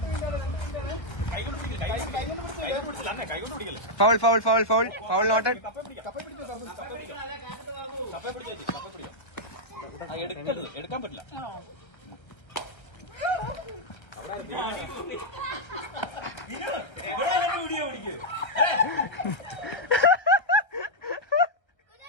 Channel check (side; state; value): right; late; 1.3 ms